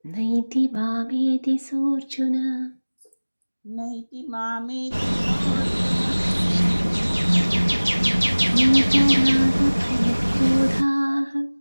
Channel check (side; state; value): both; inverted; correlation -1.00